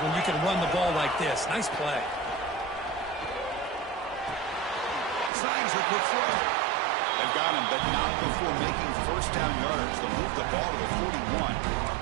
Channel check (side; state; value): left; drops out; at 5.3 s